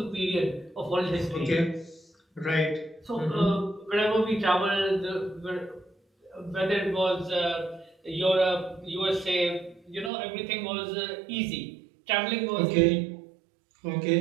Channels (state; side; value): drops out; left; at 10.1 s